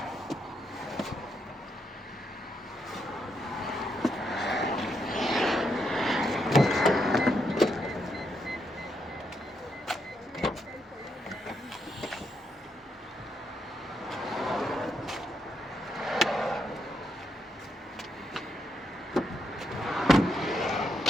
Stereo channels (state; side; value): normal; both; correlation 0.79